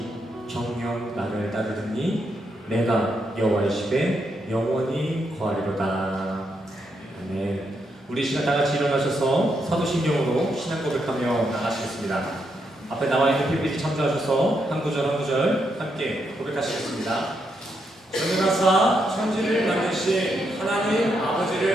정녕 나를 따르더니 내가 여호와의 집에 영원히 거하리로다. 아멘. 우리 시간 다 같이 일어나셔서 사도신경으로 신앙 고백하며 나가시겠습니다. 앞에 나와 있는 PPT 참조하셔서 한 구절 한 구절 함께 고백하시겠습니다. 전능하사 천지를 만드신 하나님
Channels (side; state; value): both; normal; correlation 0.80